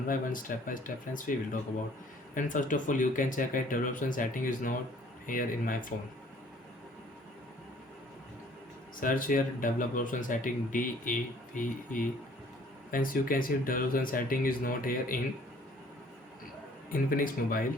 by one, step by step friends we will talk about. And first of all, you can check that development setting is not here in my phone. Search here development setting DEVE. Friends, you can see development setting is not here in Infinix mobile.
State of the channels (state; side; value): normal; both; correlation 0.56